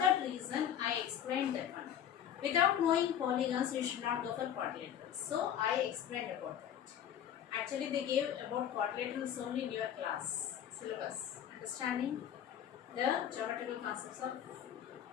that reason I explained that one. Without knowing polygons, you should not go for quadrilaterals. So I explained about that. Actually, they gave about quadrilaterals only in your class syllabus. Understanding the geometrical concepts of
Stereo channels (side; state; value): right; quieter; 9.7 dB